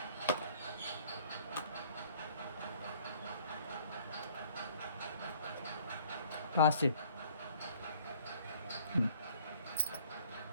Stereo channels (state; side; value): inverted; both; correlation -0.57